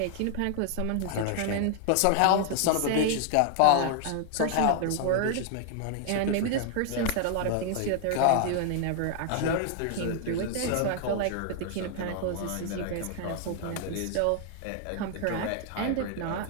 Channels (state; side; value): different; both; correlation 0.00